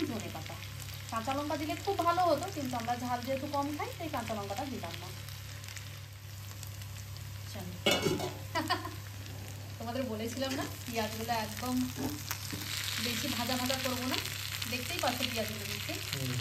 ধনে পাতা। কাঁচা লঙ্কা দিলে খুব ভালো হতো, কিন্তু আমরা ঝাল যেহেতু কম খাই তাই কাঁচা লঙ্কাটা দিলাম না। তোমাদের বলেছিলাম না পেঁয়াজগুলো একদম বেশি ভাজা ভাজা করবো না, দেখতেই পাচ্ছ পেঁয়াজগুলো দিচ্ছে।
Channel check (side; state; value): both; identical; correlation 1.00